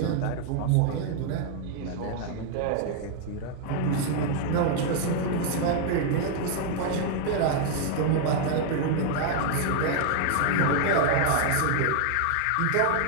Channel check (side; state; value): both; different; correlation 0.00